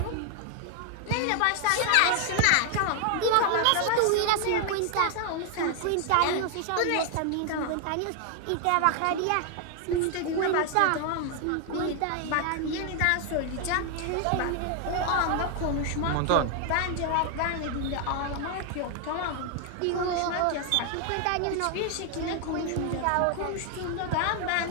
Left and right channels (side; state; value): both; different; correlation 0.00